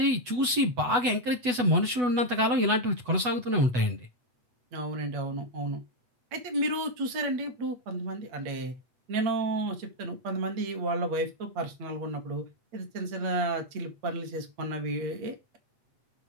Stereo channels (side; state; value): left; late; 8.1 ms